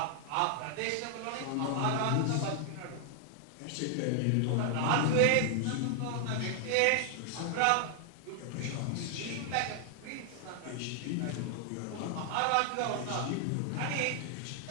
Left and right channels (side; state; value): both; different; correlation 0.00